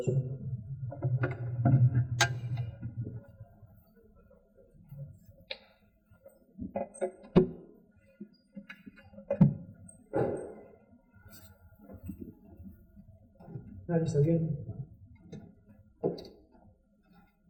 juntos. Nadie está bien.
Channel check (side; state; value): both; identical; correlation 1.00